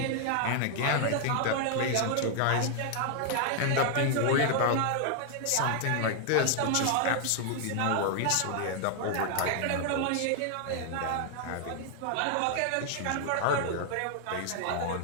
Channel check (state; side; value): different; both; correlation 0.00